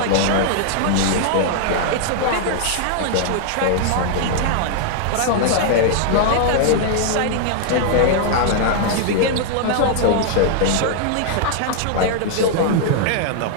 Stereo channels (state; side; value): different; both; correlation 0.00